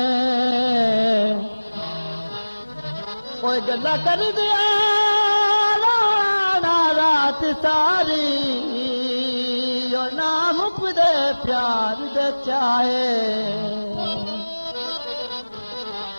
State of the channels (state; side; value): inverted; both; correlation -1.00